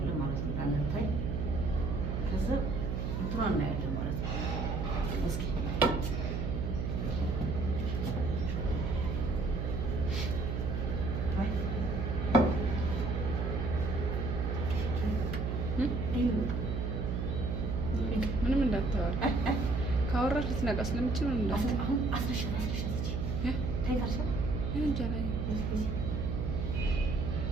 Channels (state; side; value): noise; right; hum, 1 dB below the sound